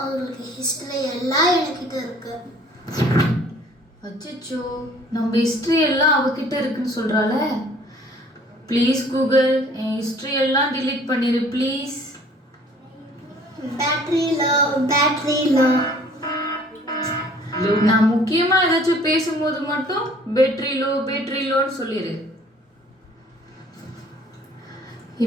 உங்களுக்கு ஹிஸ்ட்ரி எல்லாம் என்கிட்ட இருக்கு. அச்சோ, நம்ம ஹிஸ்ட்ரி எல்லாம் அவகிட்ட இருக்குன்னு சொல்றாள. ப்ளீஸ் கூகுள், என் ஹிஸ்ட்ரி எல்லாம் டிலீட் பண்ணிடு ப்ளீஸ். Battery low. நான் முக்கியமா ஏதாச்சும் பேசும்போது மட்டும் பேட்டரி லோன்னு சொல்லிடு.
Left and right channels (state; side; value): normal; both; correlation 0.54